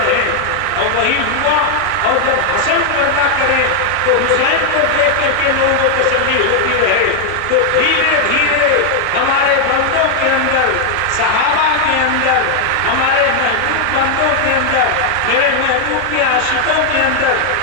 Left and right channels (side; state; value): both; different; correlation 0.00